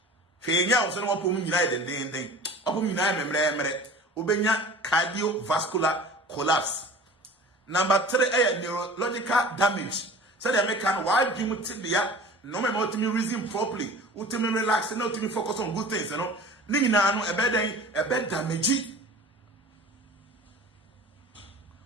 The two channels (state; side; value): normal; both; correlation 0.41